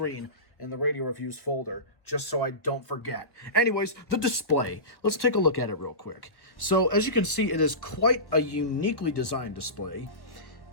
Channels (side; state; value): right; late; 1.3 ms